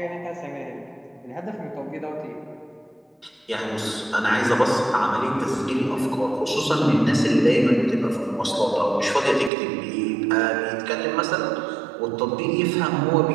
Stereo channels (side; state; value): left; drops out; at 9.5 s